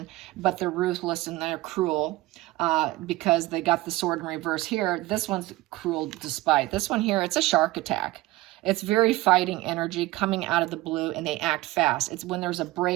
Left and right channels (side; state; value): left; quieter; 18.8 dB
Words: but they're ruthless and they're cruel because they got the sword in reverse here. This one's cruel despite. This one here, it's a shark attack. It's very fighting energy coming out of the blue, and they act fast. It's when there's a